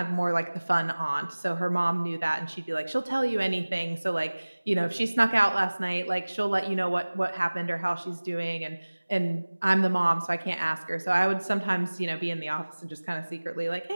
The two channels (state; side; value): inverted; both; correlation -1.00